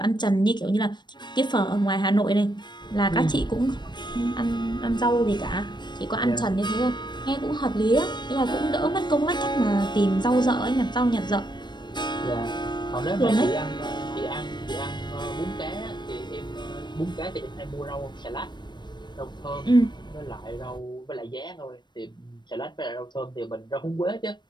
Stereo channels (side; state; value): right; late; 0.22 ms